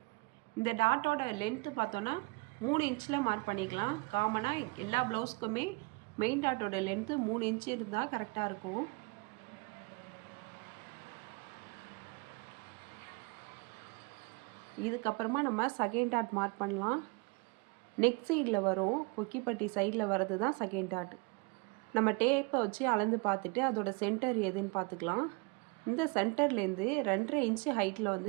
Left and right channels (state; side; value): quieter; left; 28.4 dB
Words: இந்த டாட்டோட லென்த்து பார்த்தோன்னா 3 இன்ச்சில் மார்க் பண்ணிக்கலாம். காமனாக எல்லா ப்ளவுஸ்க்குமே மெயின் டாட்டோட லென்த்து 3 இன்ச்சு இருந்தால் கரெக்டாக இருக்கும். இதுக்கப்புறமா நம்ம செகண்ட் டாட் மார்க் பண்ணலாம். நெக் சைடில் வரும், கொக்கிப்பட்டி சைடில் வர்றது தான் செகண்ட் டாட். நம்ம டேப்பை வச்சு அளந்து பார்த்துட்டு அதோட சென்டர் எதுன்னு பார்த்துக்கலாம். இந்த சென்டர்லேருந்து 2.5 இன்ச்சு ஹைட்டில்